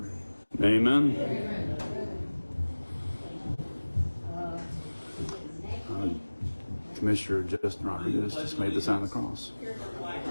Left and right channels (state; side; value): inverted; both; correlation -1.00